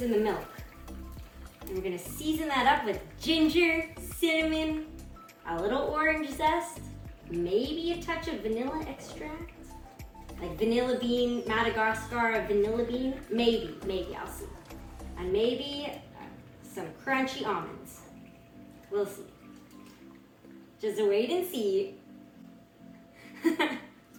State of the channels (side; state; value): both; identical; correlation 1.00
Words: in the milk. And we're gonna season that up with ginger, cinnamon, a little orange zest, maybe a touch of vanilla extract, like vanilla bean, Madagascar vanilla bean, maybe, I'll see. And maybe some crunchy almonds. We'll see. Just wait and see.